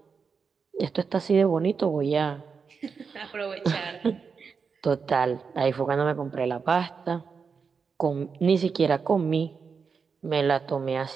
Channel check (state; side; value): quieter; left; 5.6 dB